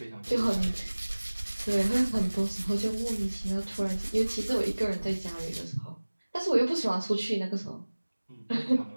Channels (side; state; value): both; inverted; correlation -1.00